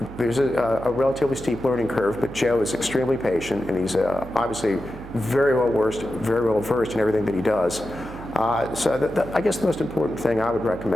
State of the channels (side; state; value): right; noise; hum, 14 dB below the sound